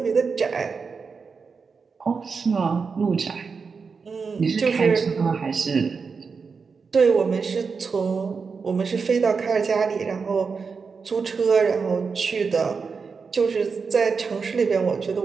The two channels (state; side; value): quieter; left; 5.2 dB